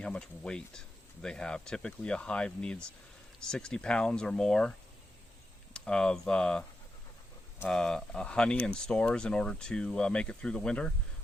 how much weight they have. Typically, a hive needs 60 pounds or more of honey and stores in order to make it through the winter.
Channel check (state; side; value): normal; both; correlation 0.88